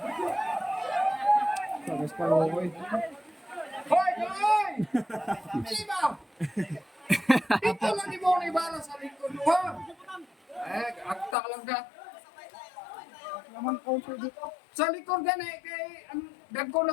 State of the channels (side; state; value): right; drops out; at 11.4 s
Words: Sabas pa rin ako eh. Hoy, hoy! Sino? Dito lang ni mo ni bala sa likod mo, ha? Akta lang ka. Naman counter dito. Sa likod ka na, kay dagko